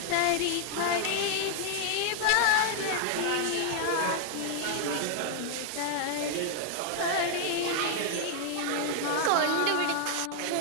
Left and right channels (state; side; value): different; both; correlation 0.00